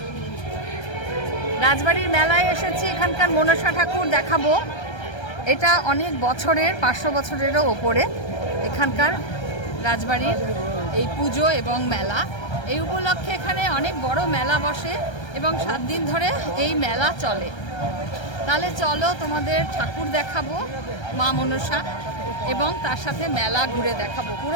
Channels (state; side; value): late; right; 1.3 ms